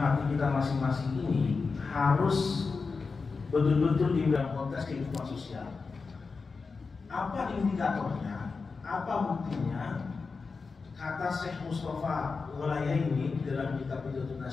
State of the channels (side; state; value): right; quieter; 4.6 dB